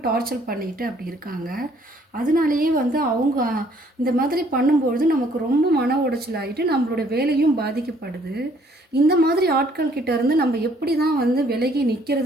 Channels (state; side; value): normal; both; correlation 0.63